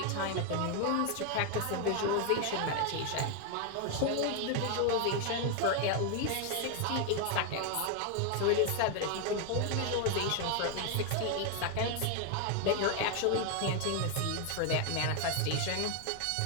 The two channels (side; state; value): both; different; correlation 0.00